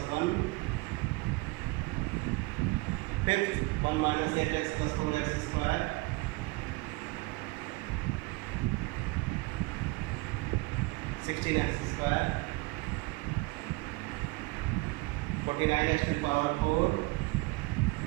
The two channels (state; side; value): quieter; left; 23.7 dB